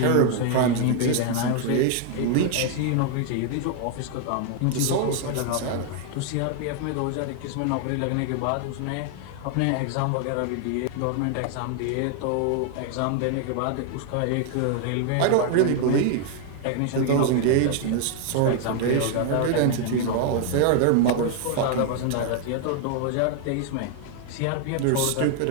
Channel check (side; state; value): both; different; correlation 0.00